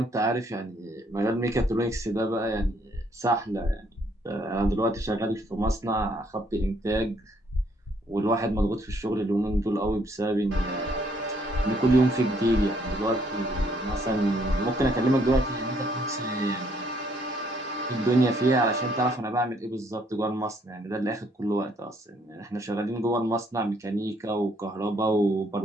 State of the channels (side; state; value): both; normal; correlation 0.68